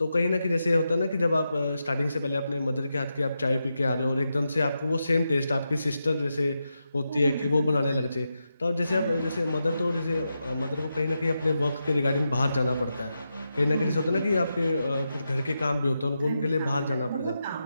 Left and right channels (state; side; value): inverted; both; correlation -0.87